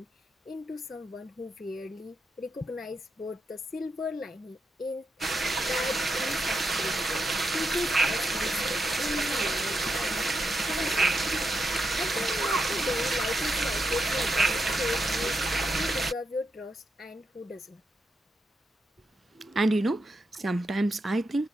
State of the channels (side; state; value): both; normal; correlation 0.84